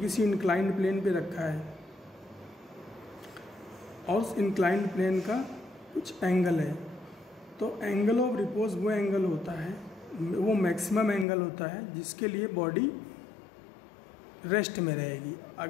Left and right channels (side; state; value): right; drops out; at 11.2 s